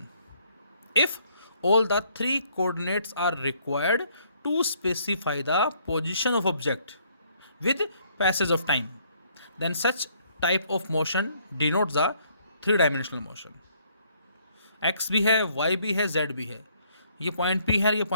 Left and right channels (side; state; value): both; inverted; correlation -0.66